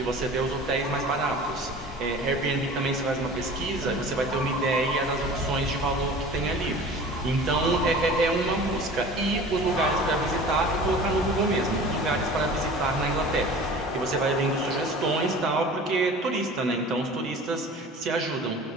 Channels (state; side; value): normal; both; correlation 0.41